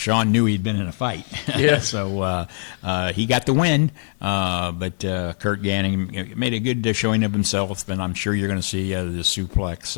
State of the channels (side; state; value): right; silent; 64 dB below the other